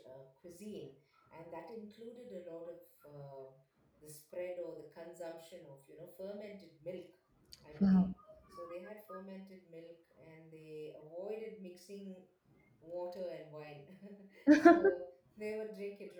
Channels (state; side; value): identical; both; correlation 1.00